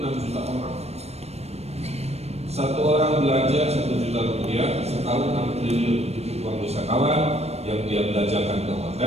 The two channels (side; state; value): left; late; 0.31 ms